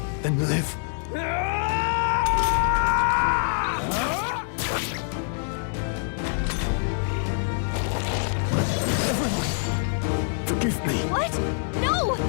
then live. Everyone, forgive me. What? No!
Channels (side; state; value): right; silent; digital silence